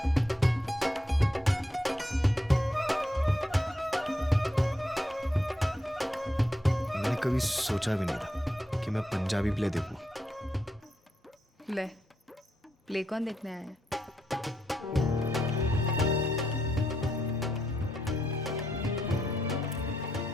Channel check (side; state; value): both; normal; correlation 0.80